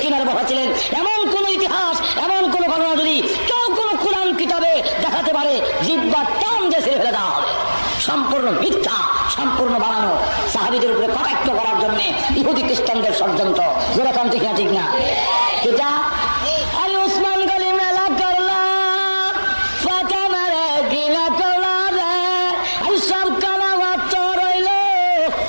কিনারে বসাছিলেন, এমন কোন ইতিহাস, এমন কোন ঘটনা যদি কেউ কোন কোরআন কিতাবে দেখাতে পারে, জিহ্বার টান দিয়ে ছেড়ে ফেলে দেওয়া হবে। সম্পূর্ণ মিথ্যা, সম্পূর্ণ বানানো, সাহাবীদের উপরে কটাক্ষ করার জন্য ইহুদি খ্রিস্টানদের ষড়যন্ত্র, যেরকম ঠিক না? ঠিক না? এটা আরে উসমান গনি মেলা করলা, ফাতেমারে গিলা করলা রে, আরে সব কানা মাত্র রইল।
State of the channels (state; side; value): inverted; both; correlation -1.00